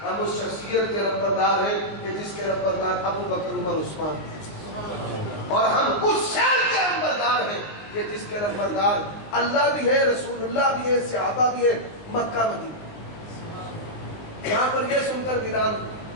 ہم اس شخصیت کے نمبردار ہیں کہ جس کے نمبردار ابو بکر، عمر، عثمان ہیں. اور ہم اس شہر کے نمبردار ہیں کہ جس کے نمبردار اللہ بھی ہے، رسول اللہ بھی ہے، صحابہ بھی ہے، مکہ مدینہ. یہاں پر یہ سن کر ویران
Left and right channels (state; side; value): late; right; 19 ms